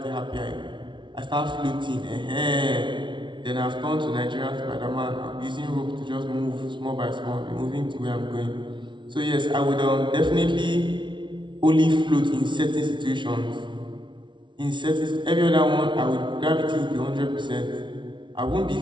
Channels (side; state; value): left; late; 0.24 ms